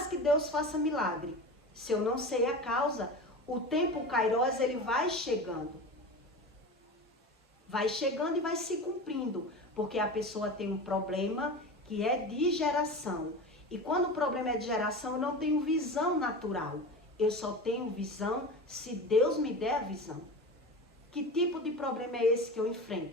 que Deus faça milagre, se eu não sei a causa, o tempo Kairos, ele vai chegando. Vai chegando e vai se cumprindo. Porque a pessoa tem um problema que é de geração. E quando o problema é de geração, eu não tenho visão natural. Eu só tenho visão se Deus me der a visão. Que tipo de problema é esse que eu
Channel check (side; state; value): both; normal; correlation 0.30